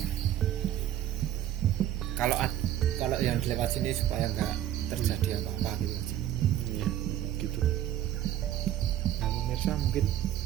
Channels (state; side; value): quieter; left; 11.9 dB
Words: kalau yang lewat sini supaya nggak terjadi apa-apa gitu. Ya, gitu. Nah, pemirsa mungkin